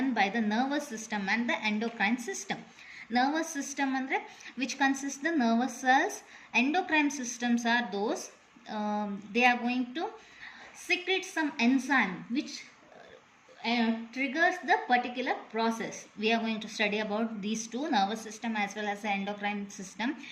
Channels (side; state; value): both; identical; correlation 1.00